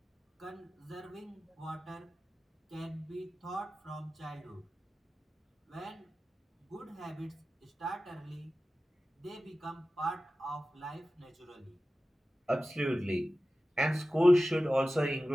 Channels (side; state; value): both; normal; correlation 0.95